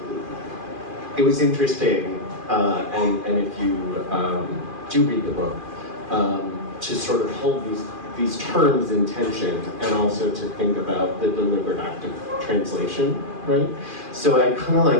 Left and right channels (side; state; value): left; late; 2.4 ms